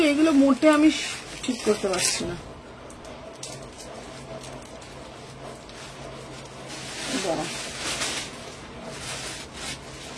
এগুলো মোটে আমি ঠিক করতে পারছি না।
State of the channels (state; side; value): identical; both; correlation 1.00